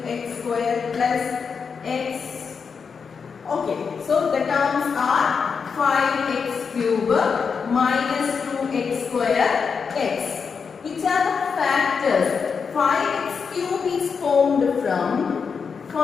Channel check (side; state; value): right; quieter; 5.8 dB